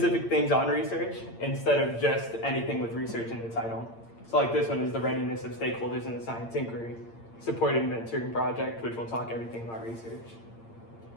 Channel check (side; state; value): right; late; 8.7 ms